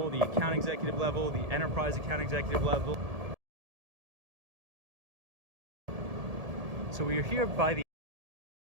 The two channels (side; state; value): left; late; 1.7 ms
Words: the account executive level, the enterprise account executive level. So we are here by the